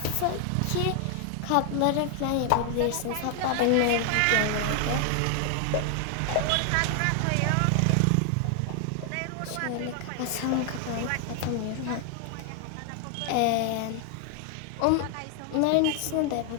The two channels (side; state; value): both; different; correlation 0.00